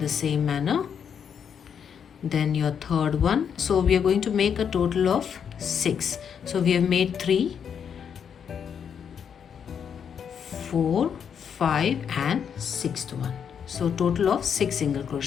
same manner. Then your third one. So we are going to make a total of 6. So we have made 3 4 5 and 6th one. So total of 6 single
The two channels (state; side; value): quieter; right; 7.6 dB